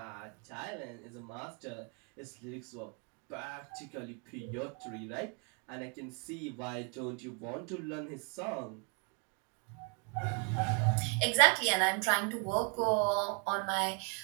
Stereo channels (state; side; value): quieter; left; 36.3 dB